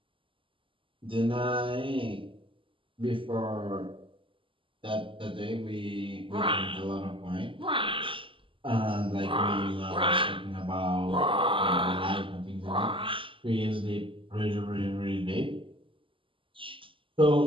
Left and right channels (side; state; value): left; late; 0.25 ms